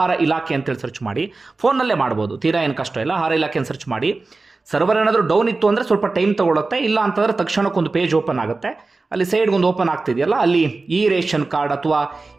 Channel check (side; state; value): left; quieter; 3.6 dB